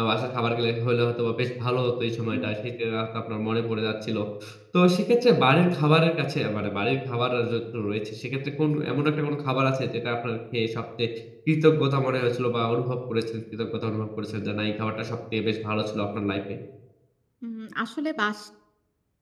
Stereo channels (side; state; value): both; identical; correlation 1.00